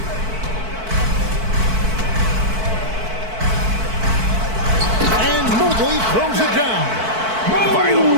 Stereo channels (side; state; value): left; late; 4.5 ms